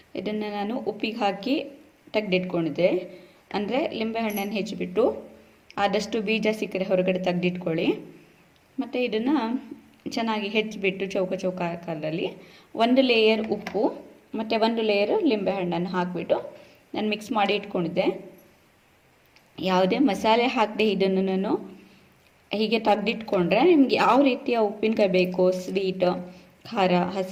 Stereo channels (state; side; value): identical; both; correlation 1.00